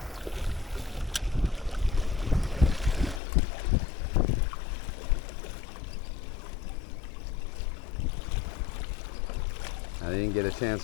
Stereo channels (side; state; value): right; drops out; at 3.2 s